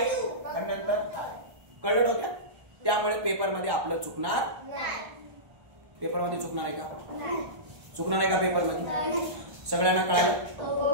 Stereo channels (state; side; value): late; left; 1.1 ms